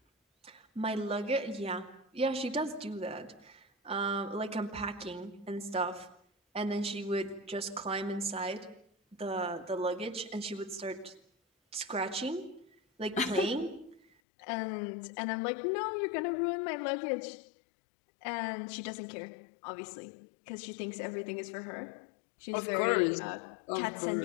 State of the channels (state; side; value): drops out; right; at 14.1 s